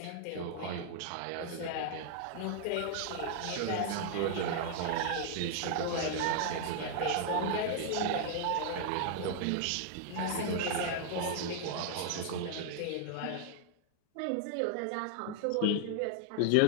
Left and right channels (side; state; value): both; different; correlation -0.01